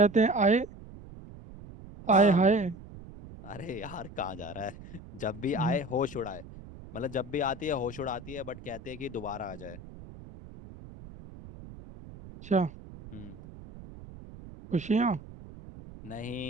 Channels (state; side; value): noise; right; rumble, 16 dB below the sound